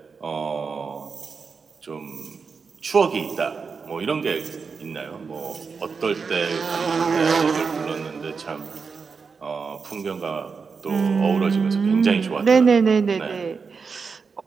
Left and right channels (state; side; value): quieter; left; 5.2 dB